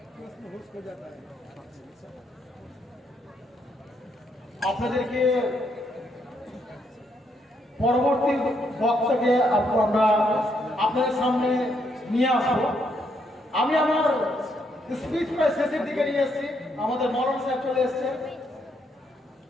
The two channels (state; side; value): normal; both; correlation 0.75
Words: আপনাদেরকে পরবর্তী বক্তাকে আমরা আপনাদের সামনে নিয়ে আসবো। আমি আমার স্পিচ প্রায় শেষের দিকে নিয়ে এসেছি। আমাদের মরণ সাহেব চলে এসছে।